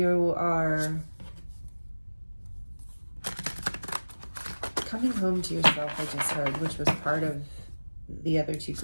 are coming home to yourself, I just heard, which was part of the other two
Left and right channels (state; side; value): inverted; both; correlation -1.00